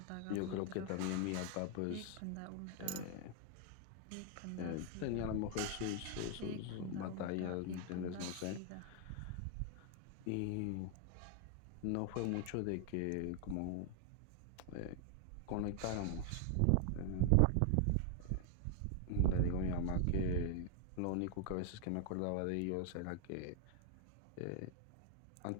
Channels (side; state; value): both; different; correlation 0.00